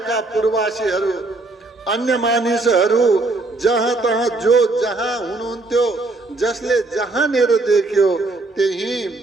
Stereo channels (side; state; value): left; quieter; 3.1 dB